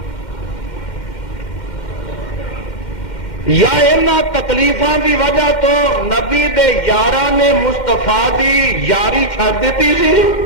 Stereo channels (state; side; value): late; right; 2.1 ms